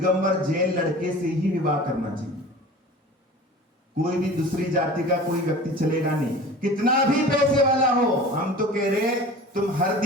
जैन लड़के से ही विवाह करना चाहिए। कोई भी दूसरी जाति का कोई व्यक्ति चलेगा नहीं, कितना भी पैसे वाला हो। हम तो कह रहे तुम हर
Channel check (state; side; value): normal; both; correlation 0.40